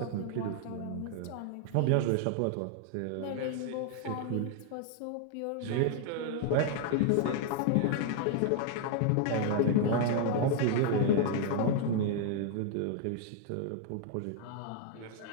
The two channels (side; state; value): both; different; correlation 0.00